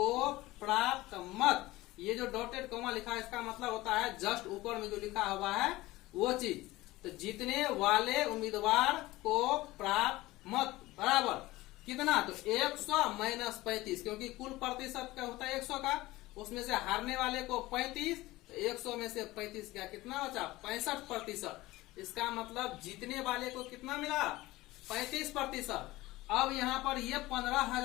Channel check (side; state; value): right; quieter; 18.8 dB